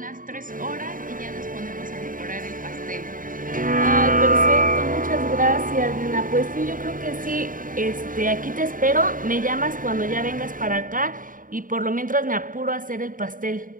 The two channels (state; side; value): late; left; 0.39 ms